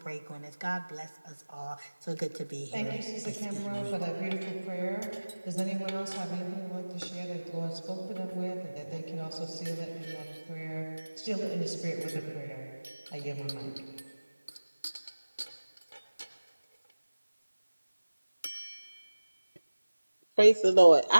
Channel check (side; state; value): both; inverted; correlation -1.00